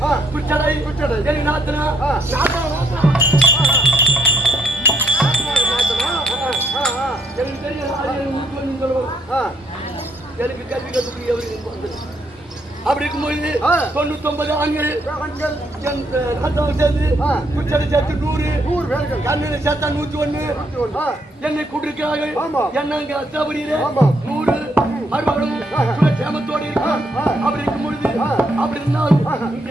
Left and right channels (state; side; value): normal; both; correlation 0.72